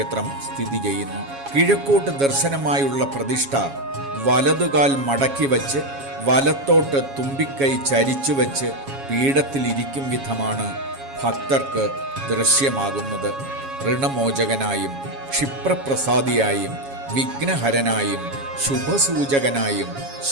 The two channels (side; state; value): left; late; 7.2 ms